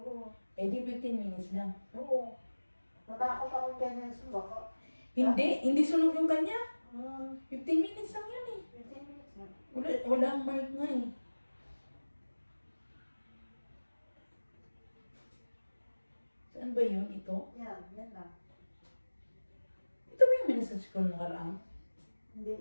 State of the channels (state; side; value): inverted; both; correlation -1.00